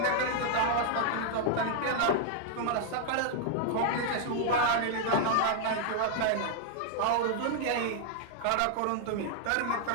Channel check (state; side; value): different; both; correlation 0.00